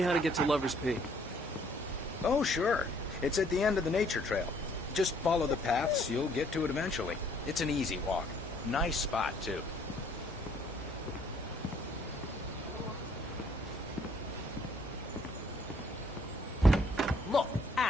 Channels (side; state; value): both; normal; correlation 0.63